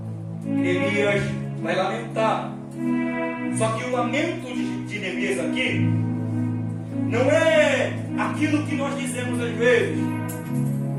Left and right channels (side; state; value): both; identical; correlation 1.00